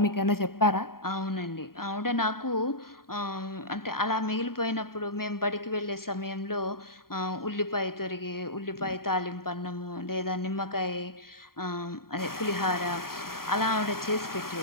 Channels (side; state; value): right; late; 0.93 ms